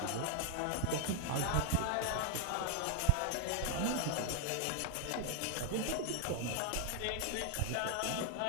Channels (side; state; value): both; different; correlation 0.00